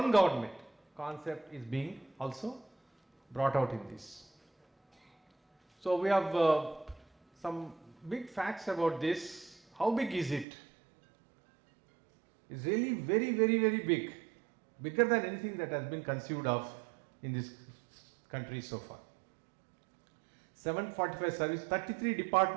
government concept is being also brought out in this. So we have some big facts about this. How big is it? It's really very, very, very big. Bigger than anything that has been conceived of in this country so far. 745 service, 33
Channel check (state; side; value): drops out; left; at 10.5 s